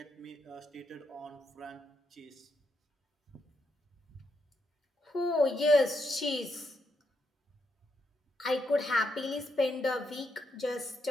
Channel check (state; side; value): normal; both; correlation 0.80